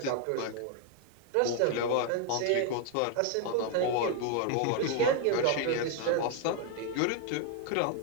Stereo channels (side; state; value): both; different; correlation 0.00